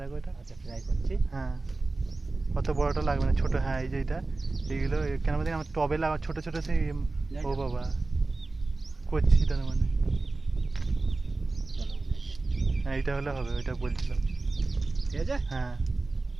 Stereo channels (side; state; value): left; quieter; 3.4 dB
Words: দেখো এটা। আচ্ছা ট্রাই করছি। হ্যাঁ অত বড়টা লাগবে না, ছোট। হ্যাঁ এই যে এটা, এইগুলো কেন বলতে আমার টবে লাগা ছোট ছোট সেই। ও বাবা করছি তার মানে। হ্যাঁ এইটা হলে হবে, ওইটা বলছিলাম। ঠিক আছে। হ্যাঁ